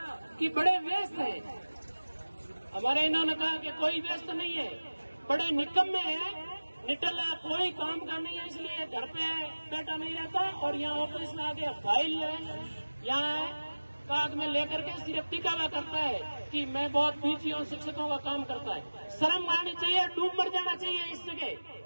कि बड़े व्यस्त हैं, हमारे इन्होंने कहा कि कोई व्यस्त नहीं है, बड़े निकम्मे हैं, निटला कोई काम का नहीं है, इसलिए घर पे बैठा नहीं रहता और यहाँ ऑफिस में आके फाइल यहाँ कागज में लेकर के सिर्फ दिखावा करता है कि मैं बहुत बिजी हूँ, शिक्षकों का काम करता है। शर्म आनी चाहिए, डूब मर जाना चाहिए इस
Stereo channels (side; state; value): both; inverted; correlation -1.00